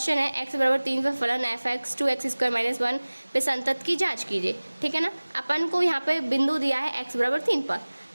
है, x बराबर 3 पर फलन f x 2x square minus 1 पे संतत की जांच कीजिए। ठीक है ना, अपन को यहाँ पे बिंदु दिया है x बराबर 3 पर,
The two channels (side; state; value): both; inverted; correlation -1.00